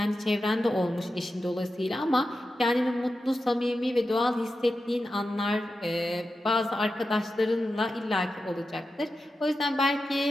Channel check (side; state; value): both; normal; correlation 0.91